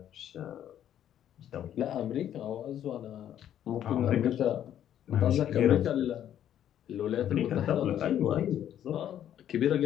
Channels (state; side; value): quieter; right; 10.6 dB